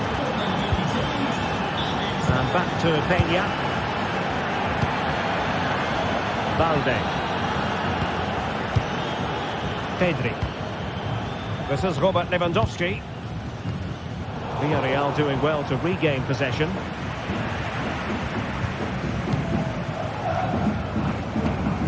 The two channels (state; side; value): identical; both; correlation 1.00